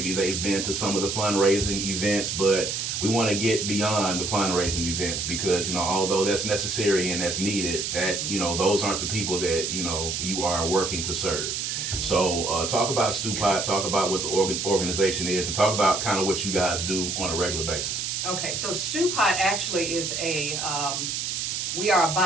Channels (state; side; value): noise; right; hiss, 2 dB below the sound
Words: they've been to some of the fundraising events, but we want to get beyond the fundraising events because, although that's necessary and that's needed, that, those aren't the people that, you are working to serve. So talk about Stewpot, talk about what the organization is, and talk about kind of what you guys do on a regular basis. Okay, so Stewpot actually is we are a